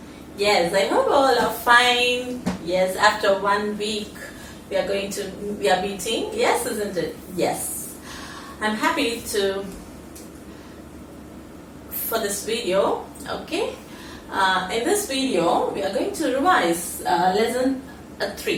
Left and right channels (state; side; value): identical; both; correlation 1.00